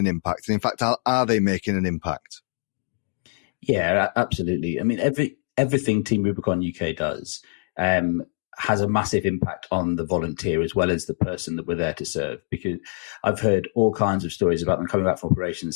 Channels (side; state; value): right; silent; 59 dB below the other